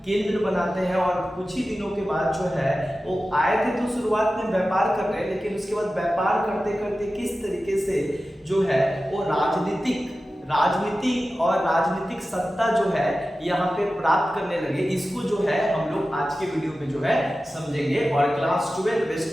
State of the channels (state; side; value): normal; both; correlation 0.94